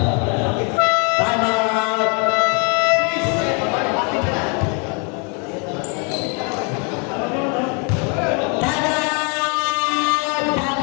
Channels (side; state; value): right; quieter; 35.7 dB